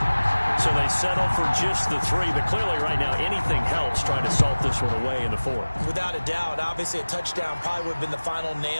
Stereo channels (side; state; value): both; inverted; correlation -1.00